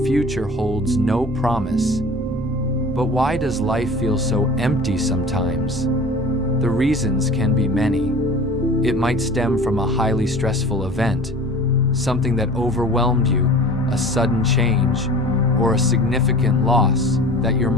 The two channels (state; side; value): normal; both; correlation 0.41